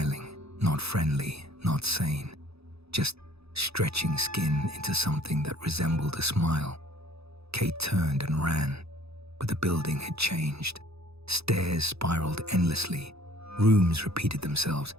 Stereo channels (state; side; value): late; left; 0.78 ms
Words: not friendly, not sane, just stretching skin into something that resembled a smile. Kate turned and ran, but the building had changed. Stairs spiraled endlessly. Rooms repeated themselves.